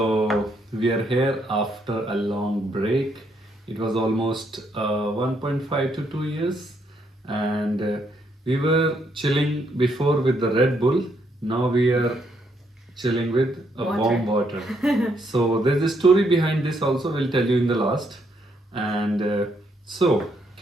we are here after a long break. It was almost 1.5 to 2 years, and we were chilling before with the Red Bull. Now we are chilling with a warm water. So, there's a story behind this also, we'll tell you in the last. And so,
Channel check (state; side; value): normal; both; correlation 0.74